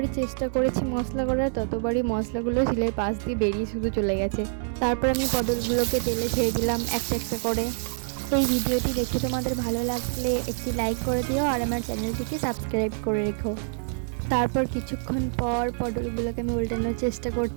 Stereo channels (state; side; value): silent; left; 61 dB below the other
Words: চেষ্টা করেছি মশলা করার, ততবারই মশলাগুলো শিলের পাশ দিয়ে বেরিয়ে শুধু চলে গেছে। তারপর আমি পটলগুলোকে তেলে ছেড়ে দিলাম একটা একটা করে। এই ভিডিওটি দেখে তোমাদের ভালো লাগলে একটি লাইক করে দিও আর আমার চ্যানেলটিকে সাবস্ক্রাইব করে রেখো। তারপর কিছুক্ষণ পর পটলগুলোকে আমি উল্টানোর চেষ্টা